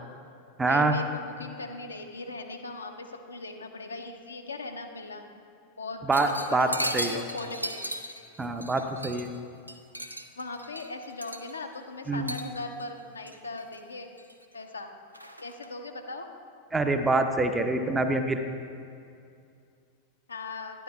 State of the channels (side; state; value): both; normal; correlation 0.36